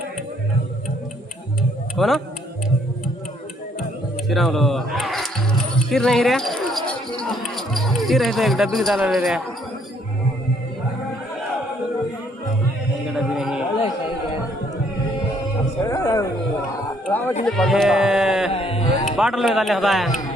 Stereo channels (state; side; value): normal; both; correlation 0.66